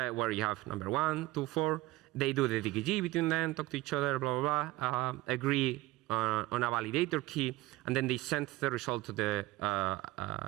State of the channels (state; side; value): quieter; left; 18.3 dB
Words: you have number 1, 2, 4. They do the DKG between them, talk to each other, blah, blah, blah, agree on a validator key, and then they send the result to the